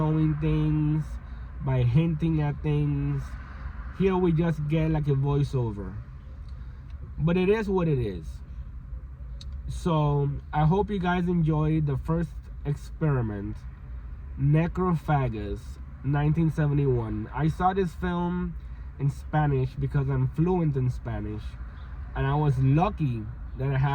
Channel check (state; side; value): identical; both; correlation 1.00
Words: things, by hinting at things. Here we just get like a voiceover, but it is what it is. So I hope you guys enjoyed the first experiment, Necrophagous, 1971. I saw this film in Spanish because I'm fluent in Spanish, and I was lucky that I